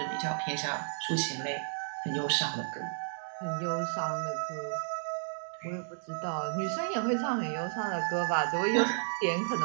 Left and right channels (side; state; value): left; silent; digital silence